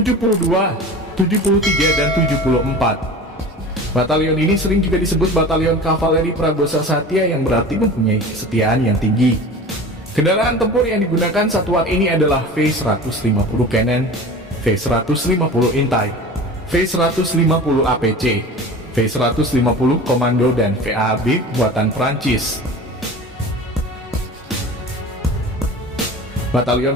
73, dan 74. Batalion ini sering juga disebut Batalion Kavaleri Pragosa Satya yang berarti mempunyai kesetiaan yang tinggi. Kendaraan tempur yang digunakan satuan ini adalah V150 Cannon, V150 Intai, V150 APC, V150 Komando, dan VAB buatan Prancis.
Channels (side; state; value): both; normal; correlation 0.36